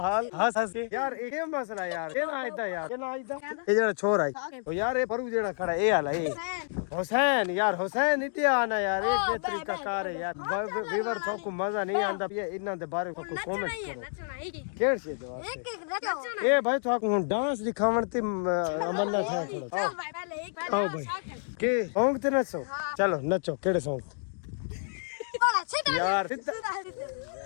हाल हंस हंस के यार ये मसला यार के ना इदा यार के ना इदा ये जेड़ा छोर आई ओ यार ये परू जेड़ा खड़ा ए हाल है हुसैन यार हुसैन इते आना यार ये के तरीका कार है यार वीवर तो को मजा नहीं आंदा ये इना दे बारे को कमेंट करो केड़ से दवा ए भाई तो डांस दिखावन ते अमन्ना था थोड़ा आओ भाई के सॉन्ग ते नचो चलो नचो केड़े सॉन्ग यार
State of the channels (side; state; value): right; silent; digital silence